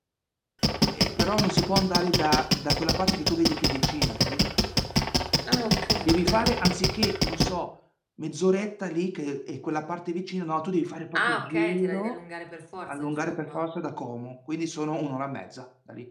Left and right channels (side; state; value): both; identical; correlation 1.00